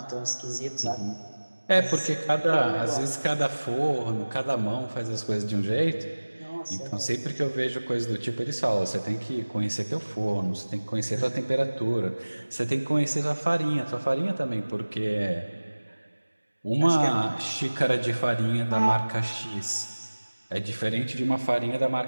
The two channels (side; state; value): both; inverted; correlation -1.00